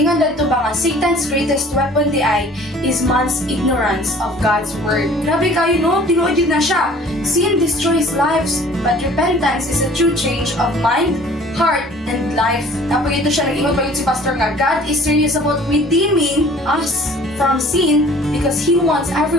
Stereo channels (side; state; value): both; normal; correlation 0.50